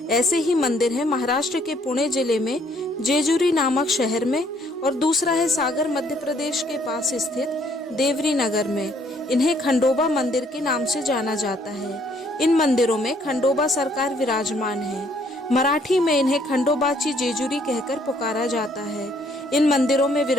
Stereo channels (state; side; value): normal; both; correlation 0.65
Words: ऐसे ही मंदिर हैं महाराष्ट्र के पुणे जिले में जेजुरी नामक शहर में, और दूसरा है सागर मध्य प्रदेश के पास स्थित देवरी नगर में। इन्हें खंडोबा मंदिर के नाम से जाना जाता है। इन मंदिरों में खंडोबा सरकार विराजमान है। मराठी में इन्हें खंडोबाची जेजुरी कहकर पुकारा जाता है। इन मंदिरों में